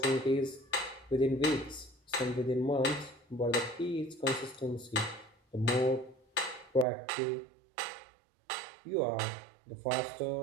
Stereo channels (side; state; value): left; drops out; at 6.9 s